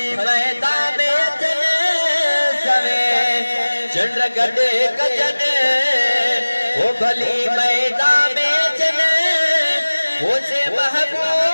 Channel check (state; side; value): inverted; both; correlation -1.00